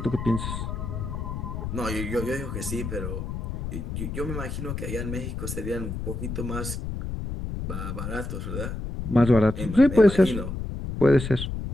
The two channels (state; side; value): noise; left; rumble, 5 dB below the sound